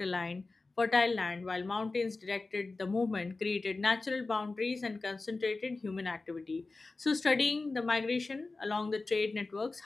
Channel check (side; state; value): right; quieter; 3.6 dB